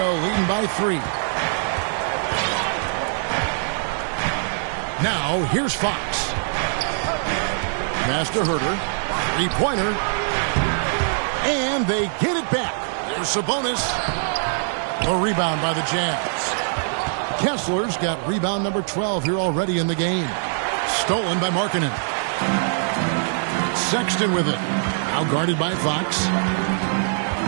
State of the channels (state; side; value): silent; left; digital silence